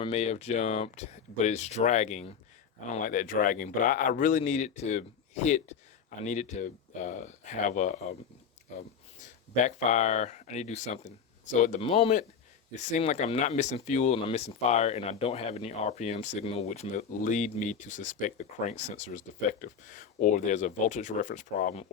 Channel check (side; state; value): right; quieter; 6.8 dB